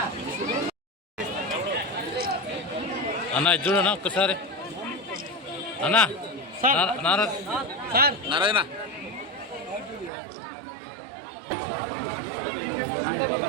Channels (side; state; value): left; drops out; at 10.1 s